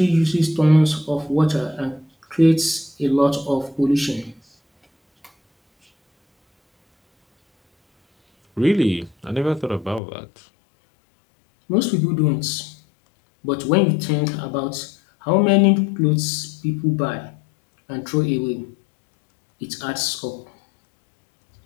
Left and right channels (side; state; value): right; drops out; at 10.0 s